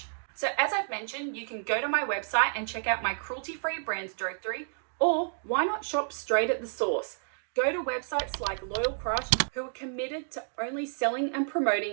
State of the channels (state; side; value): silent; left; digital silence